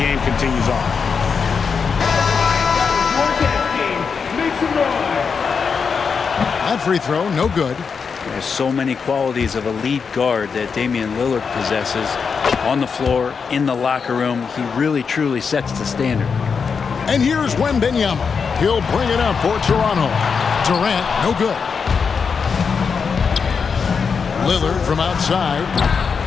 continues on. That free throw, no good. There's so many qualities of a lead guard that Damian Lillard possesses on the floor, in the locker room. He really, truly sets the standard. And here's Wembanyama. He'll bring it up for Toronto. Durant, no good. Lillard from outside.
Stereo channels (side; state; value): right; quieter; 5.8 dB